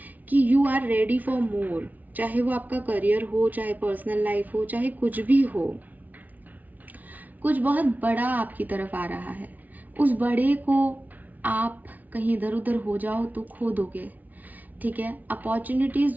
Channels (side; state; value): left; late; 0.077 ms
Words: कि you are ready for more, चाहे वो आपका करियर हो, चाहे पर्सनल लाइफ हो, चाहे कुछ भी हो, कुछ बहुत बड़ा आपकी तरफ आ रहा है। उस बड़े को आप कहीं इधर उधर हो जाओ तो खो दोगे, ठीक है। अपॉर्चुनिटीज़